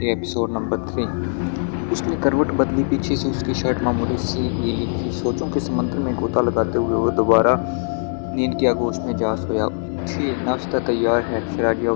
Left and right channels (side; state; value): right; silent; 65 dB below the other